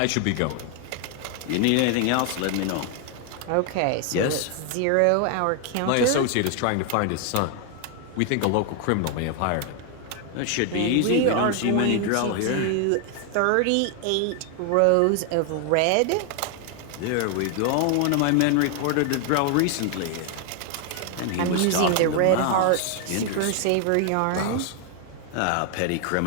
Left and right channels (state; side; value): different; both; correlation 0.00